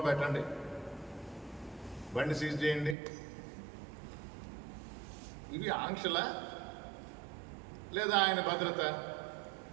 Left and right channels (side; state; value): left; drops out; at 3.0 s